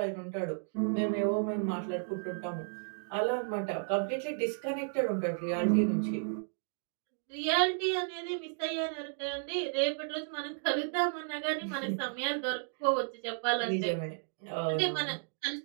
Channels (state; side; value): silent; left; digital silence